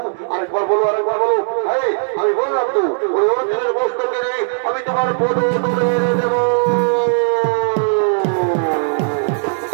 আরেকবার বলো, আরেকবার বলো। হ্যাঁ, আমি বললাম তো, ওই অর্জুনের মস্তকে নেই, আমি তোমার পদতলে এনে দেবো।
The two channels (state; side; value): silent; left; digital silence